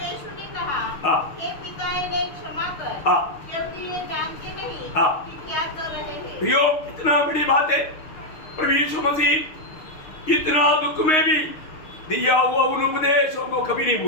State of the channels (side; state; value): right; late; 6.5 ms